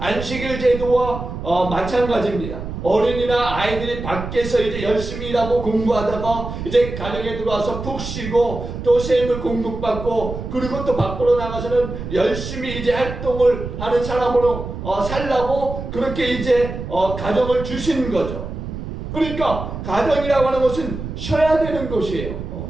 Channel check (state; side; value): noise; right; rumble, 8 dB below the sound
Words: 제도와 마찬가지입니다. 어린이나 아이들이 밖에서 이제 열심히 일하고 공부하다가 이제 가정에 들어와서 푹 쉬고 또 세물 공급받고 그리고 또 밖으로 나가서는 열심히 이제 활동을 하는 사람으로 살라고 그렇게 이제 가정을 주신 거죠. 그러니까 가정이라고 하는 것은 쉬어야 되는 것이에요.